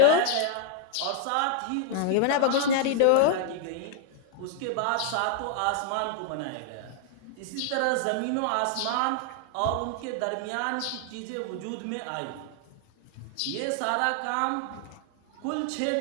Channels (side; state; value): both; different; correlation 0.00